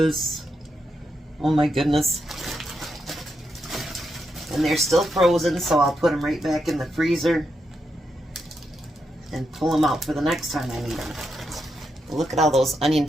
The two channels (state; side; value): normal; both; correlation 0.83